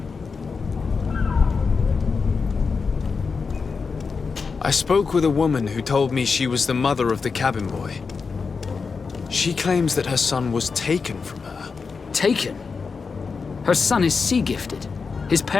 I spoke with a woman who told me she was the mother of the cabin boy. She claims that her son was taken from her. Taken? Her son is sea-gifted. His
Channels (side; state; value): right; quieter; 5.0 dB